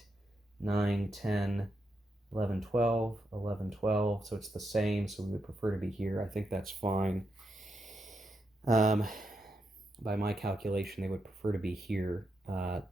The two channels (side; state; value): both; normal; correlation 0.83